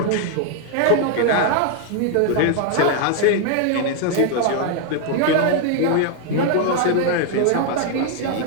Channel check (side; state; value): both; different; correlation 0.00